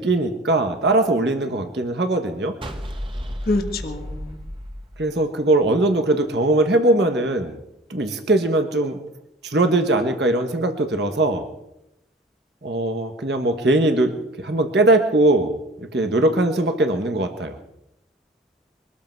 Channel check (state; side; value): normal; both; correlation 0.41